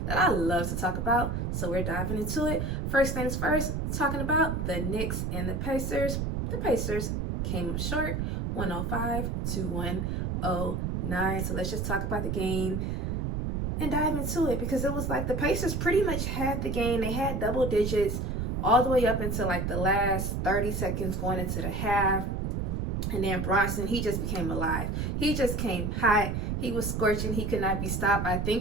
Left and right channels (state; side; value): noise; right; rumble, 1 dB below the sound